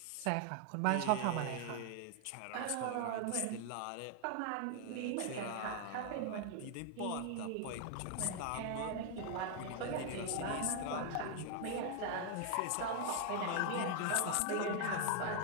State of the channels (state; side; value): different; both; correlation 0.00